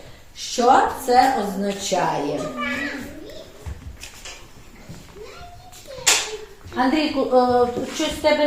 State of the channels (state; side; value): identical; both; correlation 1.00